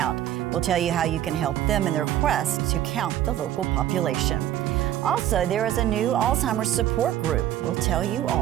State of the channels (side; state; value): left; quieter; 12.3 dB